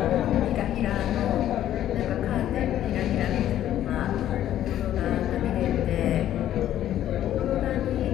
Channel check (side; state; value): right; quieter; 11.9 dB